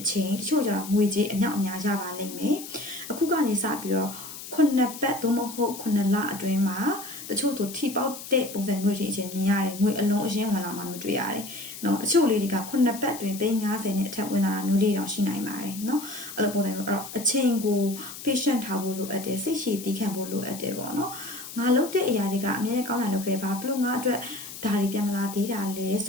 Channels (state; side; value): noise; left; hiss, 12 dB below the sound